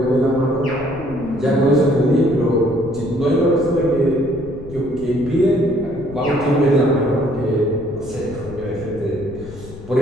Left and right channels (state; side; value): noise; left; rumble, 15 dB below the sound